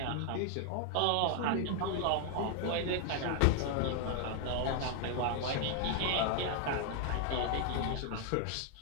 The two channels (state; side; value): different; both; correlation 0.00